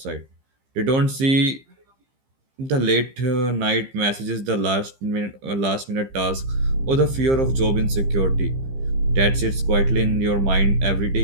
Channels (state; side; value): late; left; 15 ms